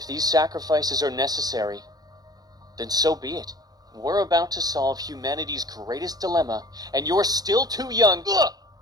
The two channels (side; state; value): left; late; 0.19 ms